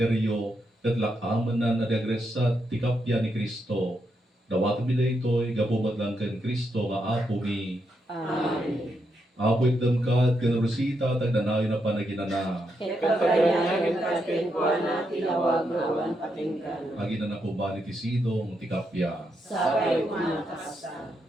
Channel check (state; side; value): normal; both; correlation 0.81